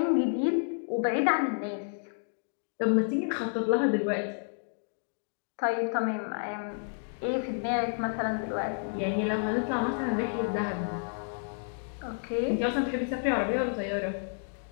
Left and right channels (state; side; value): silent; right; digital silence